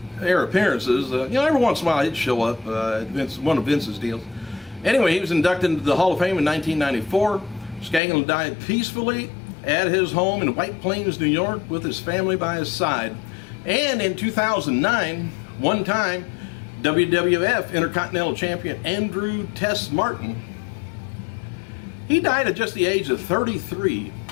appearances. Every once in a while he'd show up at one of Vince's deals. Anyway, he was inducted into the Hall of Fame in 1994. Skaglan died peacefully at his home in White Plains, New York, with his family by his side. And in 2009, one time, WWF Intercontinental Champion Andrew Tess Martin, he died at just the age of 33.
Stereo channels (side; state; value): right; drops out; at 8.0 s